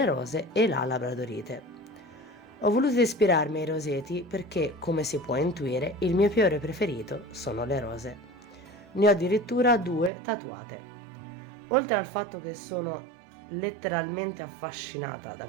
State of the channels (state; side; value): drops out; left; at 10.1 s